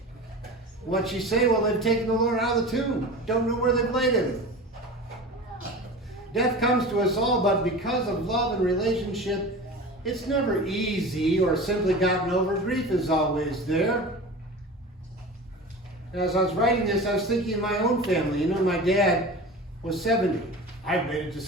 What'd she say? Well, they've taken the Lord out of the tomb. Don't know where they've laid him. Death comes to us all, but because of love and relationship, it's never easy or simply gotten over. Grief is always there. As I was writing this, I was thinking of my own family. You know, my dad was 70. I've made it to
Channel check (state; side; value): normal; both; correlation 0.33